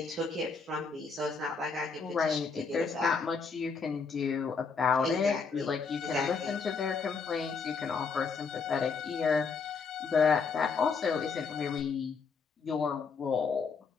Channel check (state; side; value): quieter; right; 5.1 dB